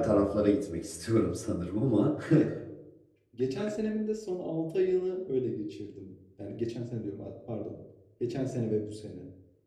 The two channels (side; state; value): both; identical; correlation 1.00